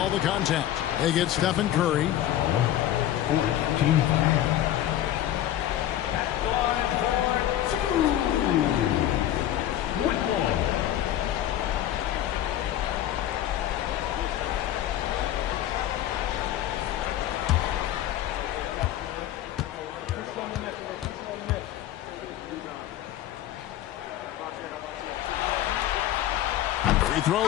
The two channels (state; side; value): quieter; right; 12.4 dB